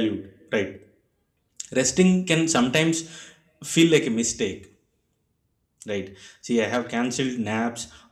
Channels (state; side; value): identical; both; correlation 1.00